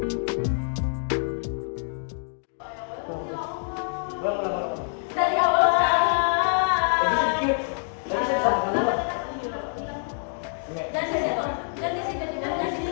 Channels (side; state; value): right; silent; digital silence